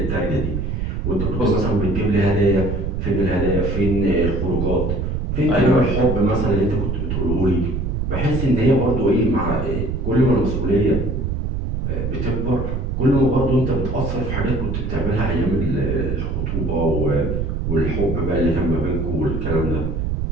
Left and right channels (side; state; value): right; noise; rumble, 2 dB below the sound